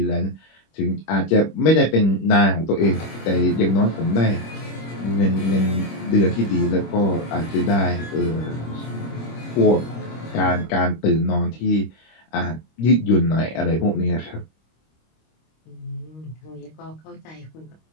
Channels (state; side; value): late; right; 26 ms